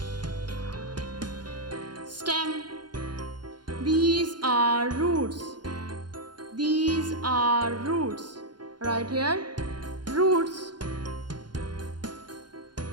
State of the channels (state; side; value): late; left; 0.71 ms